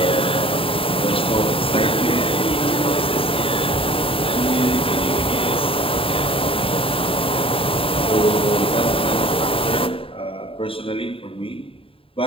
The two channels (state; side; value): late; right; 0.27 ms